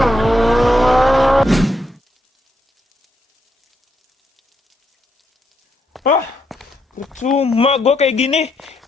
Cuma gue kayak gini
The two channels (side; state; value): both; normal; correlation 0.78